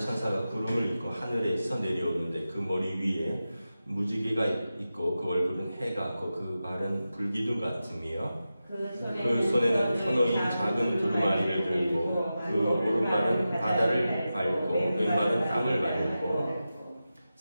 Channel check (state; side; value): inverted; both; correlation -0.92